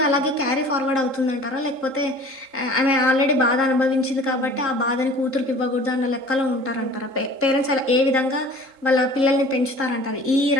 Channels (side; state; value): left; late; 3.7 ms